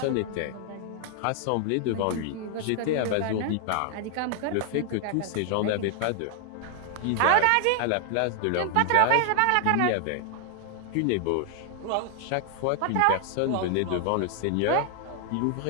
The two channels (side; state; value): both; different; correlation 0.00